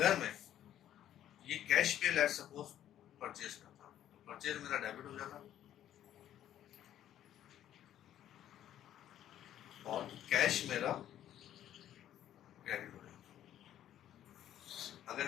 मैं ये कैश पे लेट सपोज परचेस करता हूँ तो परचेस मेरा डेबिट हो जाता, और कैश मेरा क्रेडिट हो जाता अगर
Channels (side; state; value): right; quieter; 11.5 dB